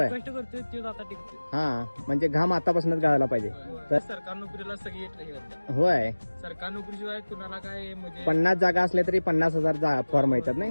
कष्ट करतोय तो आता टिकतोय. हा म्हणजे घाम आतापासूनच गाळायला पाहिजे तर सरकारी नोकरीला सगळी हे करतात. होय सरकारी नोकरीशिवाय कुणाला काय म्हणजे 50 जागा असल्या तरी 50,000 फॉर्म येतात नाही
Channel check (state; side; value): inverted; both; correlation -1.00